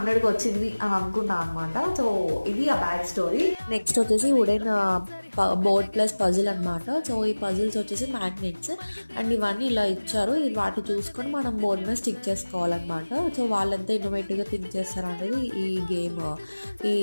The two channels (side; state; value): both; inverted; correlation -1.00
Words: వచ్చింది అని అనుకున్నాను అనమాట. సో ఇది ఆ బ్యాగ్ స్టోరీ. నెక్స్ట్ వచ్చేసి వుడెన్ బోర్డ్ ప్లస్ పజిల్ అనమాట. సో ఈ పజిల్స్ వచ్చేసి మ్యాగ్నెట్స్ అండ్ ఇవన్నీ ఇలా ఇచ్చారు. వాటి చూసుకొని మనం బోర్డ్ మీద స్టిక్ చేసుకోవాలన్నమాట. సో వాళ్ళంతా ఇన్నోవేటివ్గా థింక్ చేస్తారనేది ఈ గేమ్ ఈ